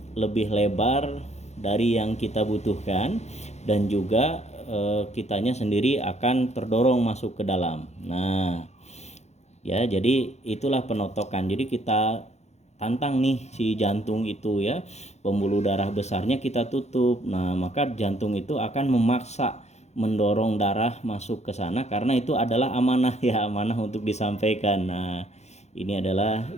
lebih lebar dari yang kita butuhkan, dan juga kitanya sendiri akan terdorong masuk ke dalam. Nah, ya, jadi itulah penotokan. Jadi kita tantang nih si jantung itu ya, pembuluh darah besarnya kita tutup. Nah, maka jantung itu akan memaksa mendorong darah masuk ke sana karena itu adalah amanah ya, amanah untuk disampaikan. Nah, ini adalah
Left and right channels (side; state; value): right; late; 0.32 ms